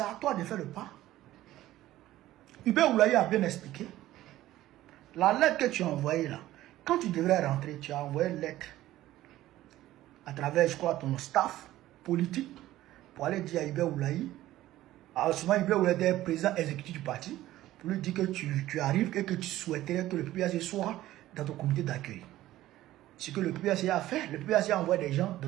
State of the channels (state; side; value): quieter; left; 15.0 dB